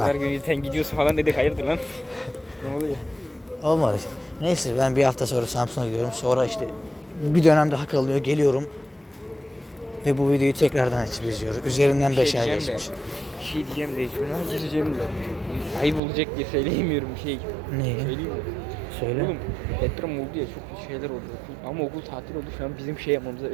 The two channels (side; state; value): left; drops out; at 16.0 s